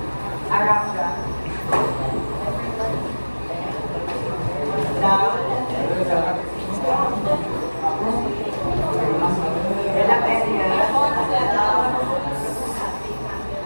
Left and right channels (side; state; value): both; inverted; correlation -1.00